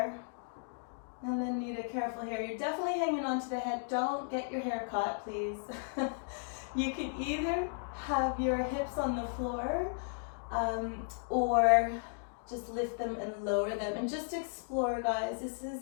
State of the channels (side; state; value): right; silent; digital silence